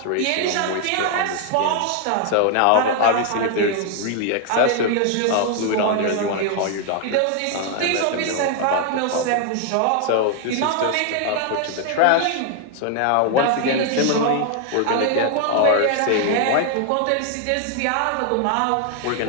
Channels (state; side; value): different; both; correlation 0.00